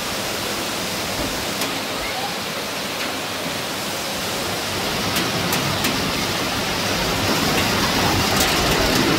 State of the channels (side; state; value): both; identical; correlation 1.00